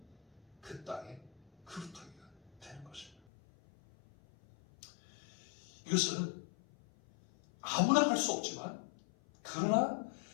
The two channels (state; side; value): drops out; right; at 3.2 s